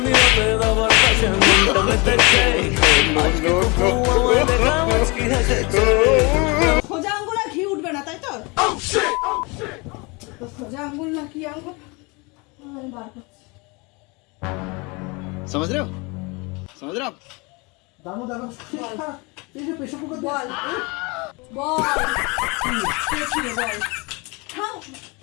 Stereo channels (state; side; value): quieter; right; 27.7 dB